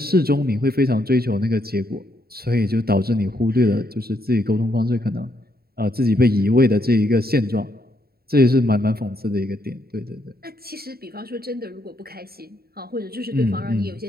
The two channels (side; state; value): left; late; 0.45 ms